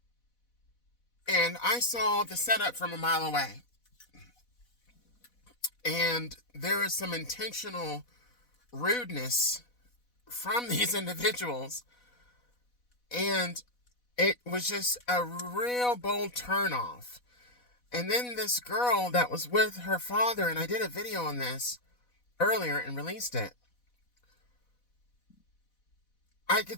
and I saw the setup from a mile away. And there is some intentional rudeness from these individuals. And it was just a real bold turnoff. And then this girl that was with her father, and I did a video on this earlier and released it. I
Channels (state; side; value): late; right; 4.1 ms